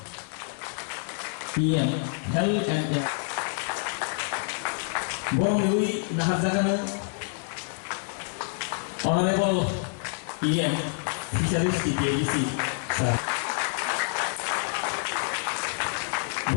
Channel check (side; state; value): right; silent; 60 dB below the other